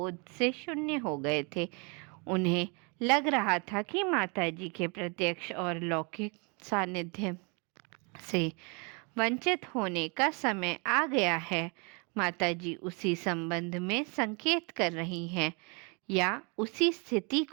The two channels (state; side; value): quieter; left; 32.9 dB